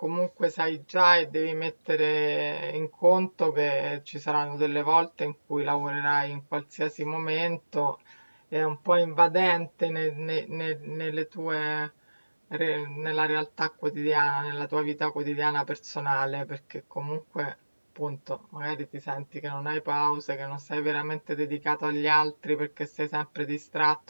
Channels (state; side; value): inverted; both; correlation -1.00